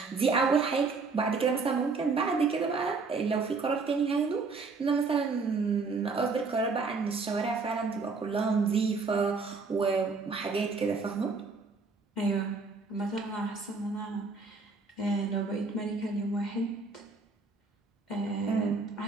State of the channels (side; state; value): left; quieter; 4.3 dB